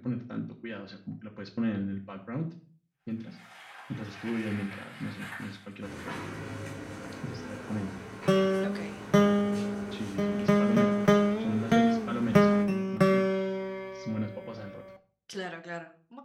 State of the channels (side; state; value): both; identical; correlation 1.00